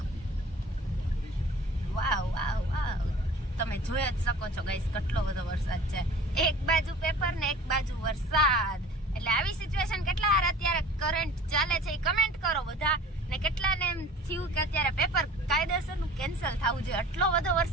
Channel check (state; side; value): normal; both; correlation 0.44